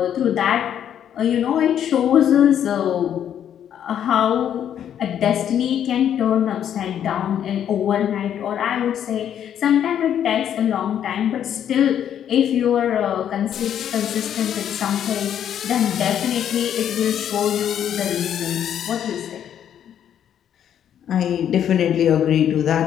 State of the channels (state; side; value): quieter; right; 9.6 dB